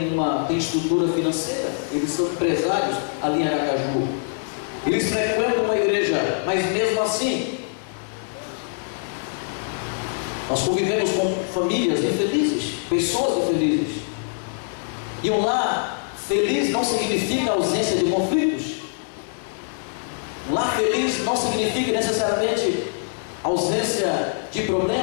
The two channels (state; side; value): silent; right; 63 dB below the other